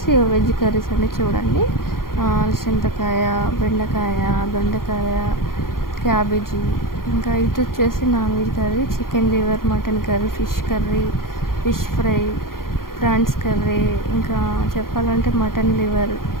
వెజ్ కర్రీస్ అండి. చూడండి చింతకాయ, బెండకాయ, దొండకాయ, క్యాబేజీ. ఇంకా ఇటు వచ్చేసి non veg curry, chicken liver, mutton curry, fish curry, fish fry, prawns curry, ఇంకా చెప్పాలంటే మటన్ లివర్,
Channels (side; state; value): right; late; 0.92 ms